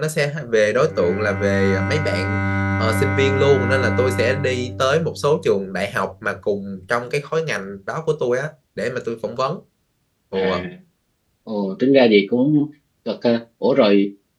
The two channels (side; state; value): both; identical; correlation 1.00